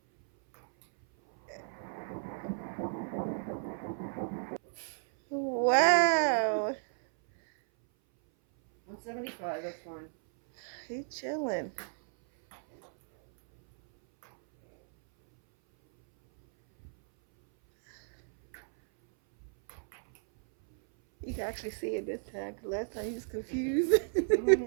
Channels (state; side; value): silent; left; 56 dB below the other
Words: Wow. 175, that's fine. He chilling. You can actually see it this time, because last time he was confused.